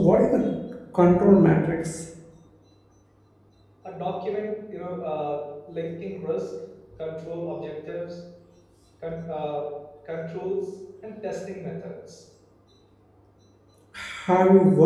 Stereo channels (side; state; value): both; identical; correlation 1.00